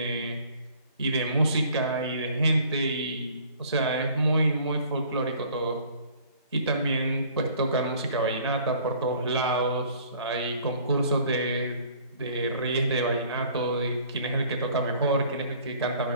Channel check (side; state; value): both; inverted; correlation -0.54